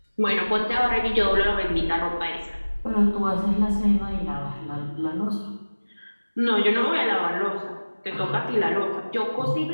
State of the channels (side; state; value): both; inverted; correlation -1.00